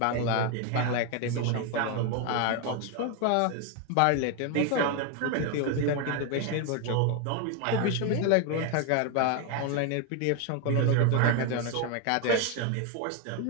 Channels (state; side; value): different; both; correlation 0.01